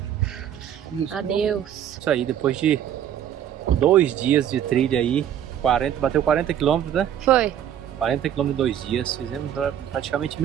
adeus. Isso aí, depois de 2 dias de trilha aí, bateu 40 km, né? Foi. 40 km em 2 dias, fizemos praticamente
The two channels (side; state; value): left; quieter; 10.1 dB